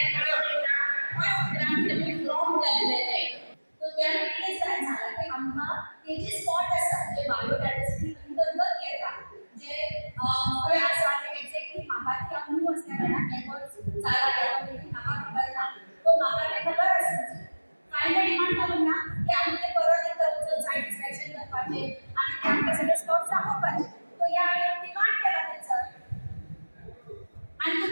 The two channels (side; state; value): both; inverted; correlation -1.00